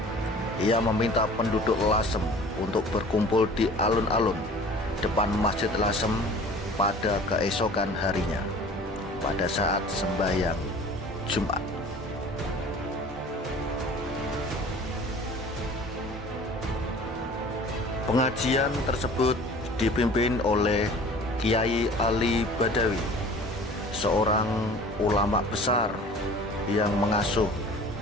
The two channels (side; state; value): both; normal; correlation 0.45